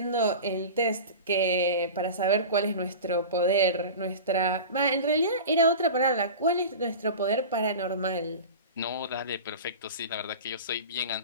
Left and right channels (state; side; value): inverted; both; correlation -0.32